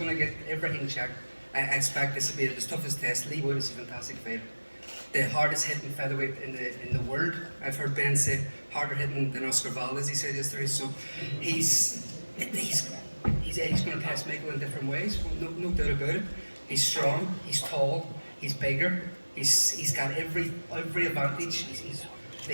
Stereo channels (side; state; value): both; inverted; correlation -1.00